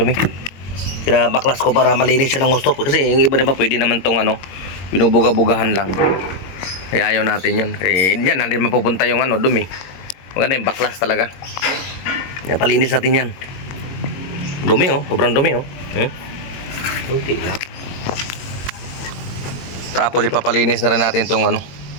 Pinabaklas ko para malinis siya ng gusto. Kasi yung iba diba pwede naman tong ano, binubuga-bugahan lang. Kaya ayaw natin yan. Kaya yan, natin mapupunta yung ano, dumi. Maganda yung baklas talaga. Yan, palinis natin yan. Dumi oh, sobrang dumi oh. Kunti lang. Tapos ipapalinis na rin natin tong ano,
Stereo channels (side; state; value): right; late; 22 ms